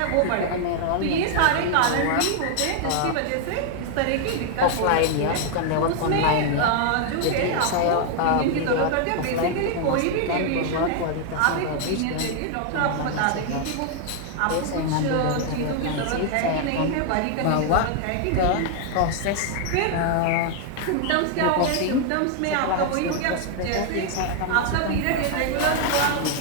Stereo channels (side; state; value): both; different; correlation 0.00